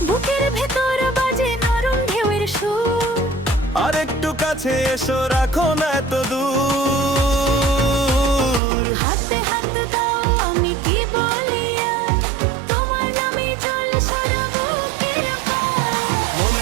বুকের ভেতর বাজে নরম ঢেউয়ের সুর, আর একটু কাছে এসো, রাখো না এত দূর। হাতে হাত দাও, আমি কি বলি আর, তোমার নামে জল সারা বুকের পার।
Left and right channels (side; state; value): left; drops out; at 8.6 s